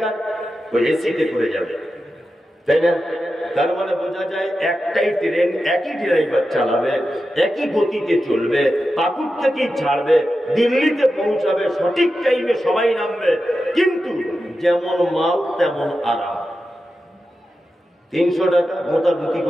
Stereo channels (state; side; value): normal; both; correlation 0.91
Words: ওই এসিতে করে যাবে, তাই না? তার মানে বোঝা যায় একটাই ট্রেন, একই ড্রাইভার চালাবে, একই গতিতে চলবে, পাকুড় থেকেই ছাড়বে, দিল্লিতে পৌঁছাবে, সঠিক টাইমে সবাই নামবে, কিন্তু যেমন মাল তেমন আরাম। 300 টাকা মোটামুটি